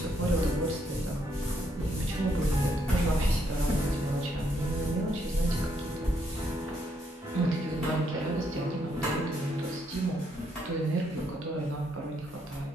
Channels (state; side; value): normal; both; correlation 0.74